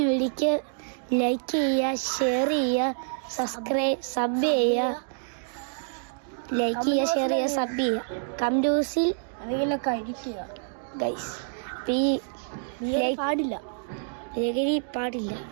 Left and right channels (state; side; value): silent; left; digital silence